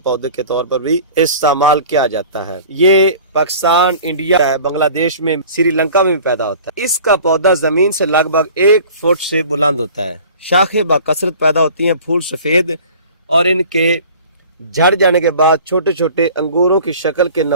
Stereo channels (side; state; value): both; inverted; correlation -0.45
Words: پودے کے طور پر بھی استعمال کیا جاتا ہے۔ یہ پاکستان، انڈیا، بنگلہ دیش میں، سری لنکا میں بھی پیدا ہوتا ہے۔ اس کا پودا زمین سے لگ بھگ 1 فٹ سے بلند ہوتا ہے۔ شاخیں بکثرت پیدا ہوتی ہیں، پھول سفید اور ان کے جھڑ جانے کے بعد چھوٹے چھوٹے انگوروں کی شکل کے